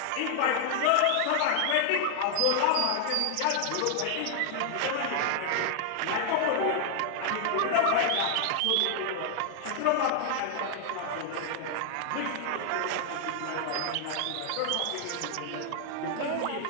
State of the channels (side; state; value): both; different; correlation 0.00